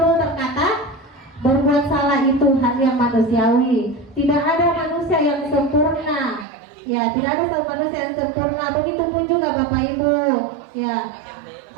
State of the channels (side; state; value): left; drops out; at 6.5 s